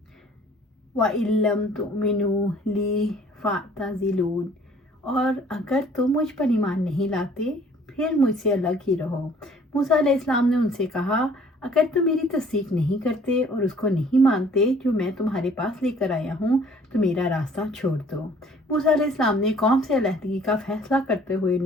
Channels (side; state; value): both; normal; correlation 0.55